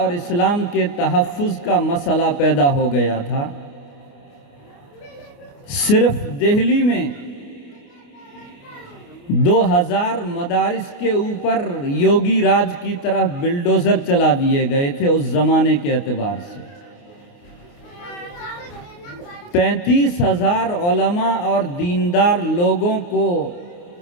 اسلام کے تحفظ کا مسئلہ پیدا ہو گیا تھا۔ صرف دہلی میں 2000 مدارس کے اوپر یوگی راج کی طرف بلڈوزر چلا دیے گئے تھے اس زمانے کے اعتبار سے۔ 35,000 علماء اور دیندار لوگوں کو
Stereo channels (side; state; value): right; late; 29 ms